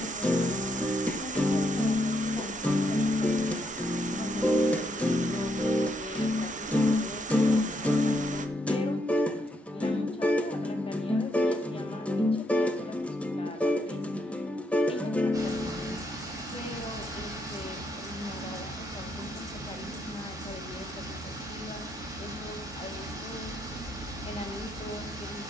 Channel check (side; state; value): both; normal; correlation 0.77